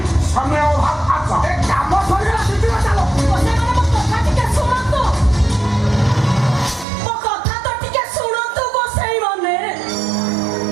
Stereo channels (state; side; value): drops out; left; at 6.9 s